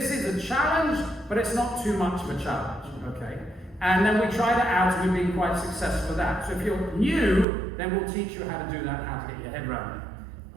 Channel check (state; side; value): drops out; left; at 7.5 s